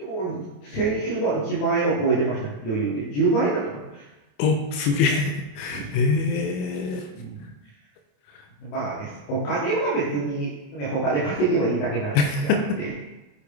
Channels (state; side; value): late; right; 28 ms